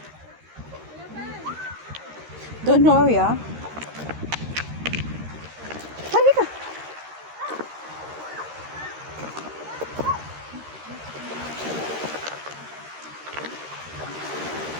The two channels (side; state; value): left; late; 13 ms